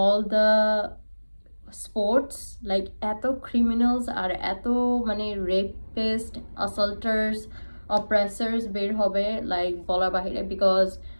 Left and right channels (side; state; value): both; inverted; correlation -1.00